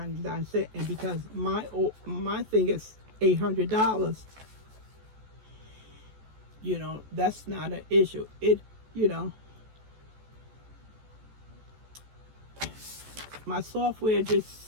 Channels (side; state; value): left; late; 14 ms